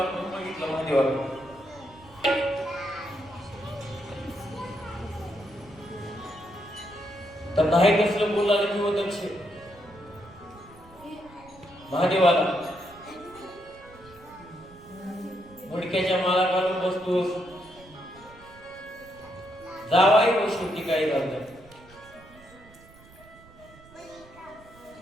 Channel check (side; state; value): right; noise; rumble, 23 dB below the sound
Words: बघितलं महादेवाला. तर नाही कसलं बोलायला किंवा दक्ष महादेवाला डोक्याच्या माला घालून बसतोस. जावाई हो शेवटी काही झालं.